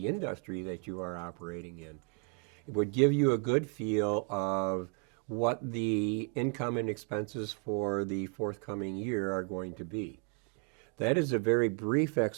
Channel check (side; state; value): left; quieter; 38.1 dB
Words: industry that you are operating in. It would give you a good feel of what the income and expenses for the forthcoming year are going to be. That is a very brief